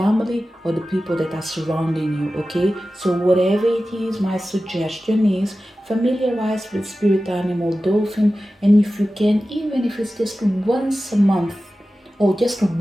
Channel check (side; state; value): both; normal; correlation 0.95